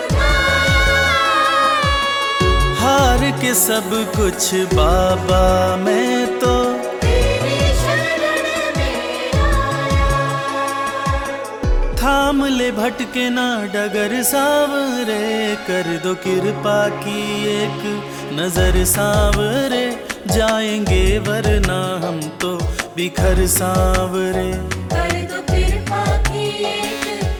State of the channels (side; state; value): both; identical; correlation 1.00